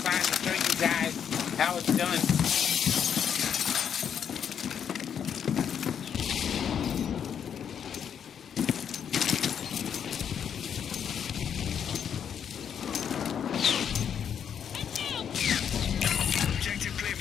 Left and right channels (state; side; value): quieter; right; 8.2 dB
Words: to show you guys how it's done. Objective clear